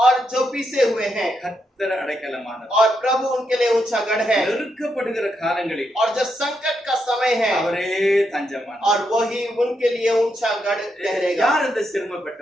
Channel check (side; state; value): both; normal; correlation 0.81